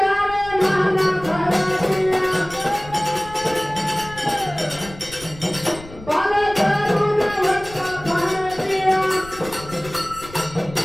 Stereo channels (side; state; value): left; noise; rumble, 17 dB below the sound